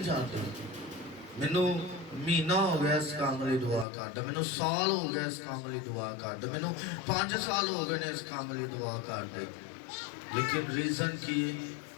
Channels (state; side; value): drops out; right; at 3.9 s